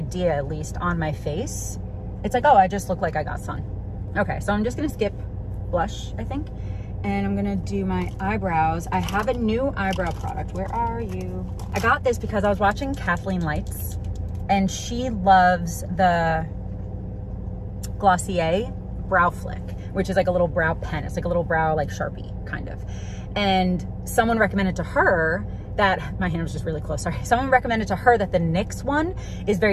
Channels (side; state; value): both; identical; correlation 1.00